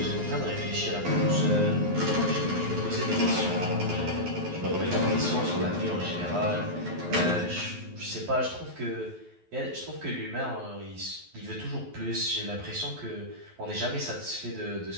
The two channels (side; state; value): left; late; 11 ms